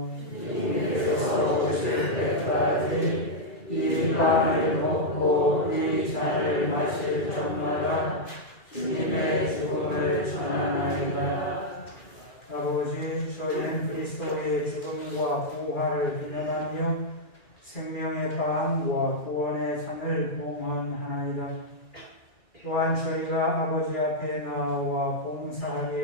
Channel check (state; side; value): late; right; 2.3 ms